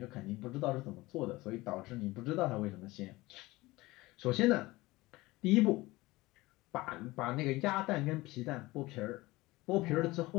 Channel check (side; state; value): right; quieter; 20.2 dB